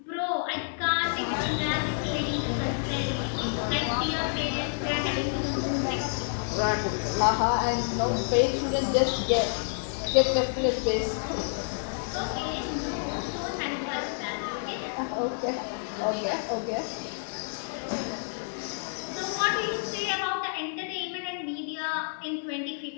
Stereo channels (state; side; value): silent; right; digital silence